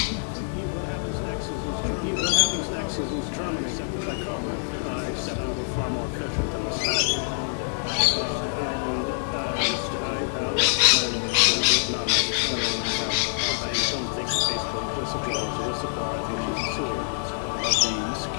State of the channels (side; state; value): right; silent; digital silence